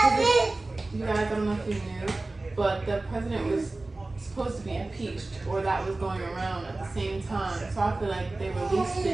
You guys, I don't know if you knew, but the president was supposed to be impeached, or that was going around at the same time. So I feel like they released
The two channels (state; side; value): quieter; left; 3.1 dB